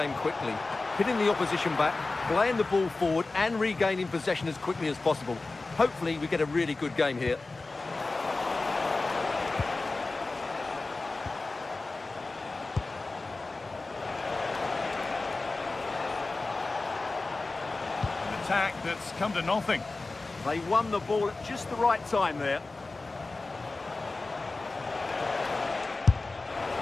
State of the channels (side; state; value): right; quieter; 3.4 dB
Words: quickly, hitting the opposition back, playing the ball forward and regaining possession as quickly as possible. Hopefully we get a really good game here. An attack that's come to nothing. They won the ball at just the right time there.